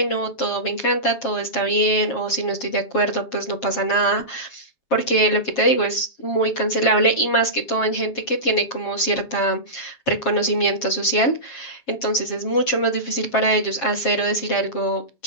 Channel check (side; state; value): right; late; 7.4 ms